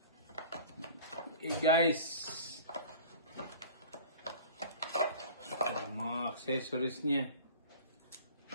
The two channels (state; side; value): inverted; both; correlation -0.42